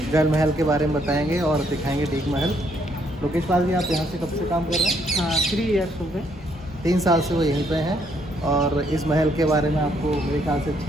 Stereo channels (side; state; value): both; normal; correlation 0.70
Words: जल महल के बारे में बताएंगे और दिखाएंगे डीक महल। लोकेश पाल जी, आप यहाँ से कब से काम कर रहे हैं? हाँ, 3 ईयर्स हो गए। 3 साल से वो यहीं पे हैं और इस महल के बारे में आपको मेरे ख्याल से